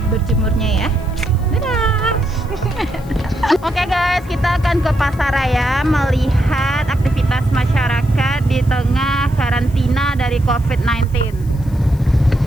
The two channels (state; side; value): noise; left; hiss, 26 dB below the sound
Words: berjemurnya ya. Dadah. Oke guys, kita akan ke Pasaraya melihat aktivitas masyarakat di tengah karantina dari COVID-19.